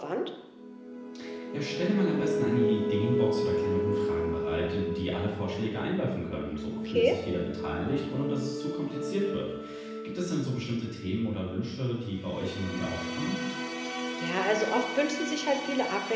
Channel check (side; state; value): both; identical; correlation 1.00